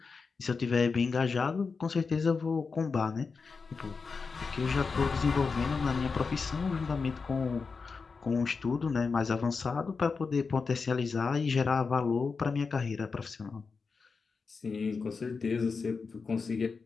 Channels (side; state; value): right; quieter; 4.8 dB